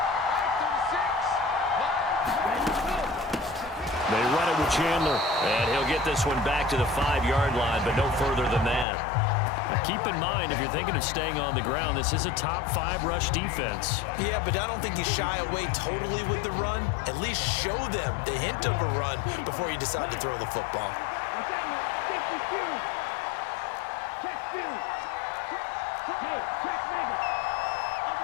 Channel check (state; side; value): drops out; right; at 8.8 s